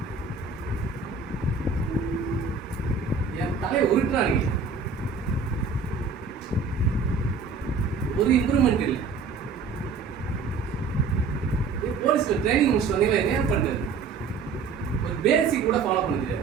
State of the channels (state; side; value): quieter; left; 5.0 dB